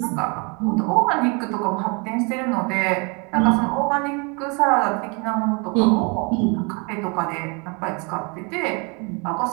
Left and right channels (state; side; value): quieter; left; 32.1 dB